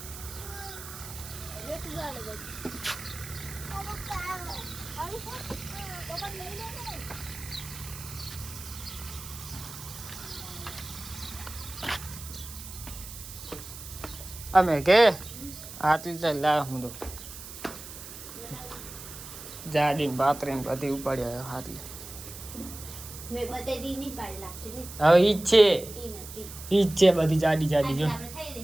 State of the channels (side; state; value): right; noise; hiss, 12 dB below the sound